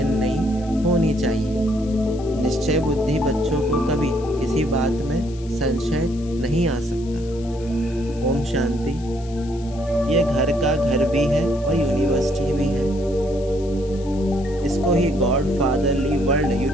नहीं होनी चाहिए। निश्चय बुद्धि बच्चों को कभी किसी बात में संशय नहीं आ सकता। ओम शांति। ये घर का घर भी है और यूनिवर्सिटी भी है। इसको ही गॉड फादरली वर्ल्ड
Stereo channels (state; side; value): noise; left; hiss, 23 dB below the sound